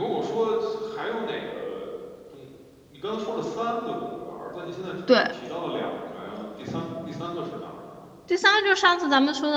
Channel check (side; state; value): both; identical; correlation 1.00